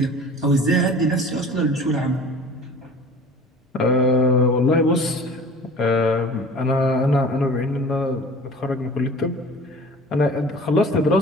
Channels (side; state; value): both; normal; correlation 0.43